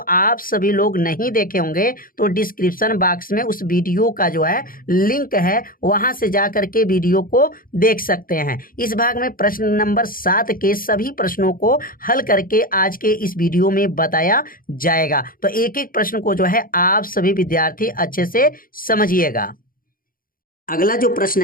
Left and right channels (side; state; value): right; late; 0.41 ms